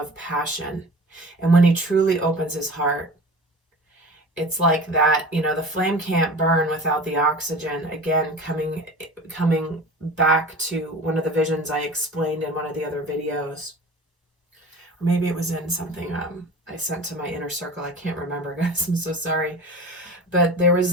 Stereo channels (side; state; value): both; normal; correlation 0.37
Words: passion. And when he truly opens his heart, it's like that, you know, the flame can't burn without the oxygen. Again, coming back to one of the visions I explained in one of the other videos. Or maybe it was in something I sent to my inner circle. I can't remember, guys. I'm so sorry. But there